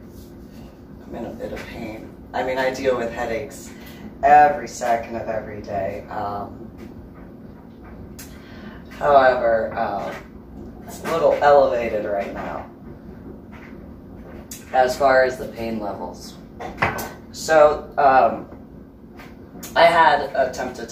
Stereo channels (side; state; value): both; identical; correlation 1.00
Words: a bit of pain. I mean, I deal with headaches every second of every day. However, it's a little elevated right now as far as the pain levels. So, I had attempted